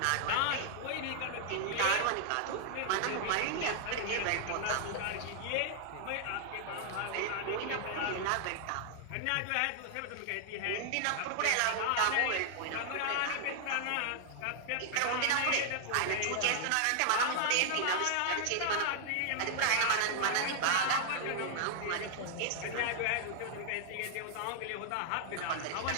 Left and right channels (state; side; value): different; both; correlation -0.01